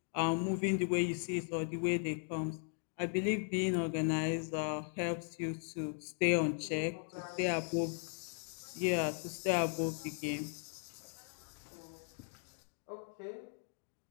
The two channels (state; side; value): silent; right; 53 dB below the other